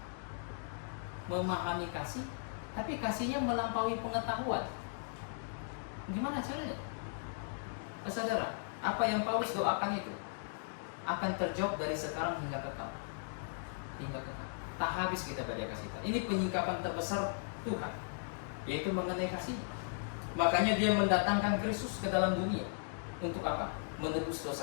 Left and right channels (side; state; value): right; silent; digital silence